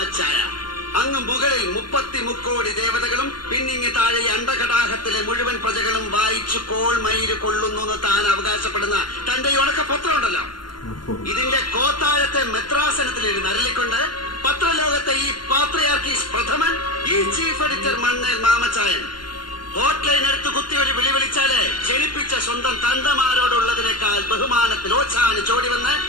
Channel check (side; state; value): right; late; 0.72 ms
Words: അങ്ങ് മുകളിൽ 33 കോടി ദേവതകളും പിന്നിങ്ങി താഴെ അണ്ടകടാഹത്തിലെ മുഴുവൻ പ്രജകളും വായിച്ചു കോൾമയില് കൊള്ളുന്നു താൻ അവകാശപ്പെടുന്ന തന്റെ ഈ ഉണക്ക പത്രമുണ്ടല്ലോ, ഇതിന്റെ കോത്താഴത്തെ മെത്രാസനത്തിലിരുന്ന് അരളിക്കൊണ്ട് പത്രലോകത്തെ ഈ പാത്രിയാർക്കീസ് പ്രഥമൻ, ഈ ചീഫ് എഡിറ്റർ മണ്ണേൽ മാമച്ചായൻ ഹോട്ട്ലൈൻ എടുത്ത് കുത്തി ഒരു വിളി വിളിച്ചാല് ജനിപ്പിച്ച സ്വന്തം തന്തമാരോടുള്ളതിനേക്കാൾ ബഹുമാനത്തിൽ ഓച്ചാന് ചോടി വന്ന്